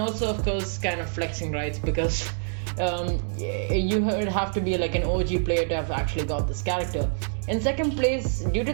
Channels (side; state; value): left; silent; digital silence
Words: also of course kind of flexing rights because you would have to be like an OG player to have actually got this character. In second place, due to